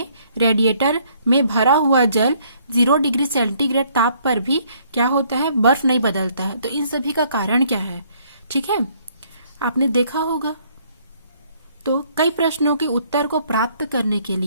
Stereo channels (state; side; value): inverted; both; correlation -0.65